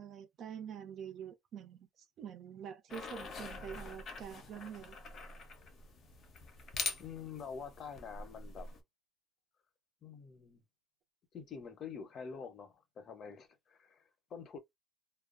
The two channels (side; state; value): both; normal; correlation 0.60